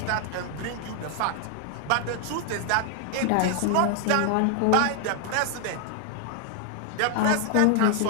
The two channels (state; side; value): different; both; correlation 0.00